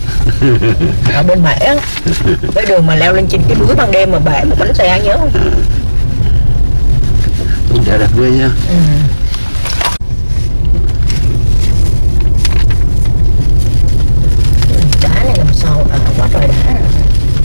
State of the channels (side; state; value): both; inverted; correlation -1.00